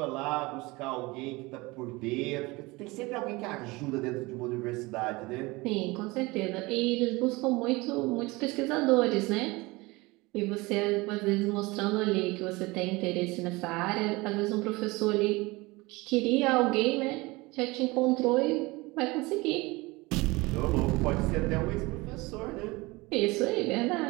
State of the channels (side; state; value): left; quieter; 23.0 dB